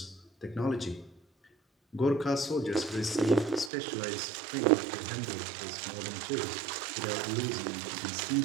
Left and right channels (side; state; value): left; drops out; at 3.7 s